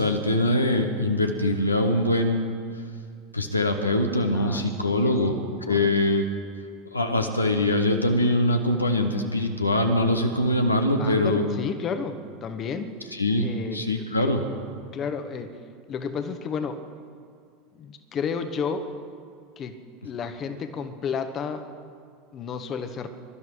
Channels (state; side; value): inverted; both; correlation -0.43